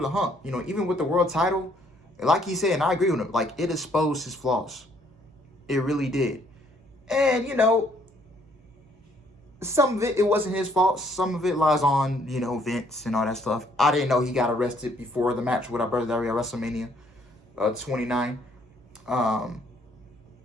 hump. You know, even with the world title, like he said, and I agree with him, like, it exposed his flaws. It really did. And, you know, some of it wasn't his fault. Some of it lies on, you know, Vince and all that stuff. I didn't know he got arrested before the match with our brother Dario at WrestleMania 29.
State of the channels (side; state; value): both; normal; correlation 0.66